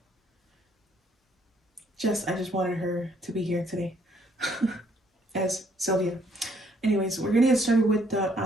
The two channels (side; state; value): both; normal; correlation 0.66